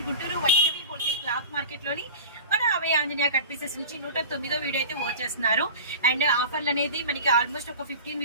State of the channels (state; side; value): inverted; both; correlation -0.35